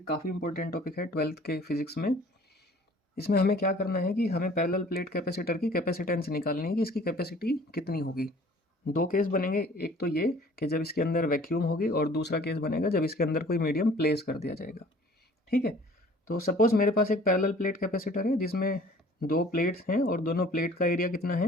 काफ़ी इंपॉर्टेंट टॉपिक है 12th के फिजिक्स में। इसमें हमें क्या करना है कि हमें पैरेलल प्लेट कैपेसिटर की कैपेसिटेंस निकालनी है कि इसकी कैपेसिटी कितनी होगी। दो केस बनेंगे, एक तो ये कि जब इसके अंदर वैक्यूम होगी और दूसरा केस बनेगा जब इसके अंदर कोई मीडियम प्लेस कर दिया जाएगा। ठीक है, तो सपोज़ मेरे पास एक पैरेलल प्लेट कैपेसिटर है जिसमें दो प्लेट्स हैं और दोनों प्लेट का एरिया कितना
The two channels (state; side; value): normal; both; correlation 0.51